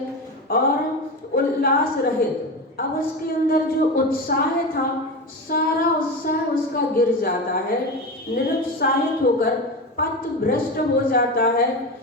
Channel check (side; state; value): both; normal; correlation 0.22